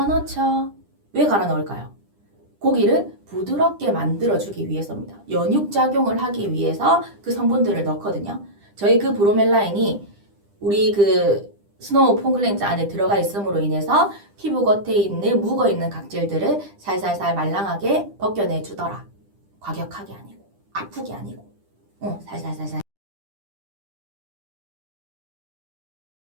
넣죠. 왜 갈아 넣을까요? 고기를 부드럽게 만들어주기 위해서입니다. 연육작용을 하기 위해서 그 성분들을 넣거든요. 저희 그 브로멜라인이 우리 그 스노우 폼 클렌저 안에 들어가 있음으로 인해서 피부 겉에 있는 묵어있는 각질들을 살살살 말랑하게 벗겨내주더라. 과격하게 아니고 아프게 아니고 살살살살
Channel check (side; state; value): left; late; 10 ms